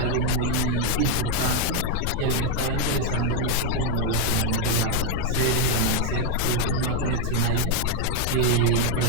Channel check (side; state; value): both; different; correlation 0.01